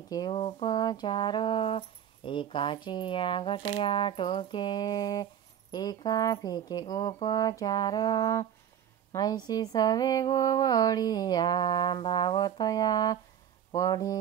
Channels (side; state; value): left; quieter; 9.7 dB